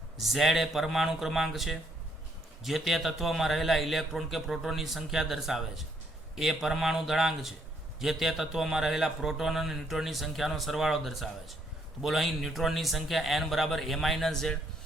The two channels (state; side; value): normal; both; correlation 0.70